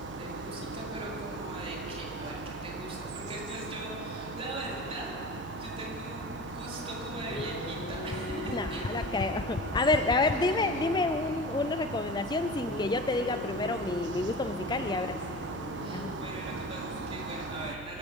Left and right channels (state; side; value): noise; right; hum, 15 dB below the sound